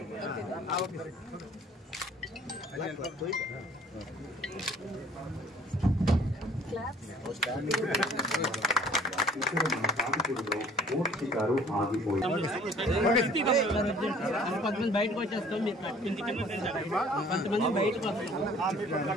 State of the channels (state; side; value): normal; both; correlation 0.54